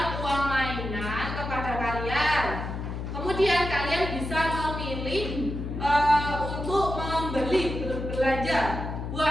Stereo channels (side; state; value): left; noise; hum, 5 dB below the sound